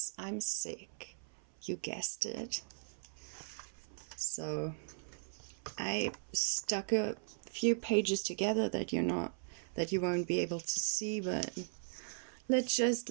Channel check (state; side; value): silent; left; 52 dB below the other